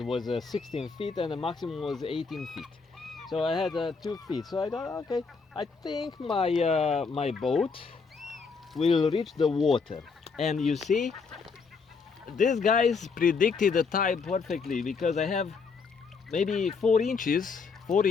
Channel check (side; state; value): right; quieter; 5.0 dB